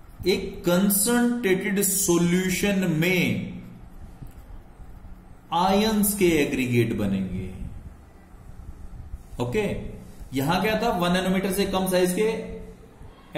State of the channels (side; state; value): both; identical; correlation 1.00